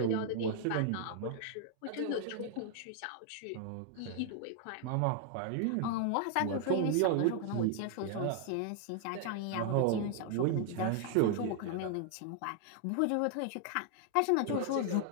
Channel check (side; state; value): both; different; correlation 0.00